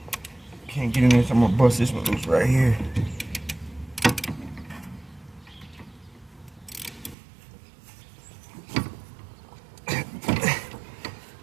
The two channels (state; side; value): drops out; left; at 7.2 s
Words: Can't get in there, so I'm gonna bust this one loose right here.